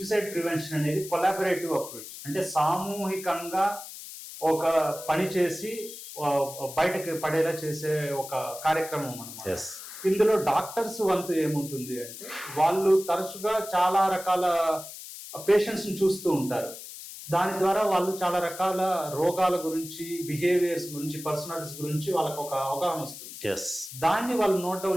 ప్రివెన్షన్ అనేది కొలాబరేటివ్ అప్రోచ్. అంటే సామూహికంగా ఒక పని చేసి బయటకు పడేలా చేసే ఒక కార్యక్రమం అన్నమాట. ఇందులో డాక్టర్స్ వంతు ఏముంటుంది అంటే, వాళ్ళు తరచుగా చాలా రకాల పేషెంట్స్ ని చూస్తూ ఉంటారు. దాని ద్వారా వాళ్ళు చాలా రకాల రోగాల గురించి, బిహేవియర్స్ గురించి, పర్సనాలిటీస్ గురించి వాళ్ళకి ఒక అవగాహన వస్తుంది. దాన్ని వాళ్ళు నోట్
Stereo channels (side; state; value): left; noise; hiss, 12 dB below the sound